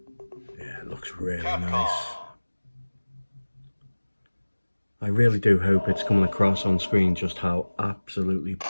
Yeah, it looks really nice. I really do hope it's coming across on screen just how absolutely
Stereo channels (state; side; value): inverted; both; correlation -1.00